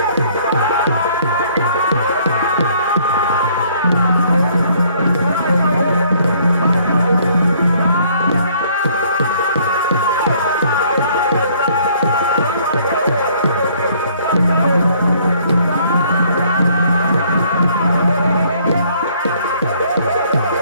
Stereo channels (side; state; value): both; inverted; correlation -0.61